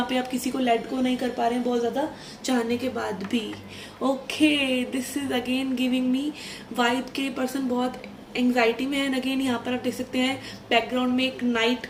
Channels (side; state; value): both; identical; correlation 1.00